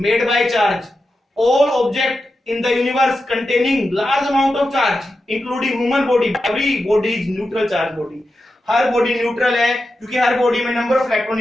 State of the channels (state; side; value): normal; both; correlation 0.90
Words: by charge, all object in the universe containing large amount of charge including human body, every body is neutral charge body। हर बॉडी न्यूट्रल है क्योंकि हर बॉडी में number of electron